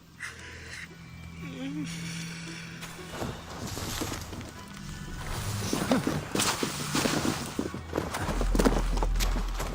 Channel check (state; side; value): identical; both; correlation 1.00